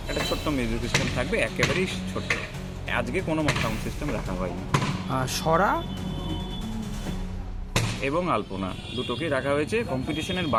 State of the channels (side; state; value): both; identical; correlation 1.00